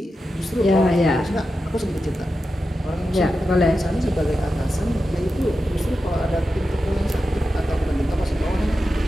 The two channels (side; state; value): both; normal; correlation 0.90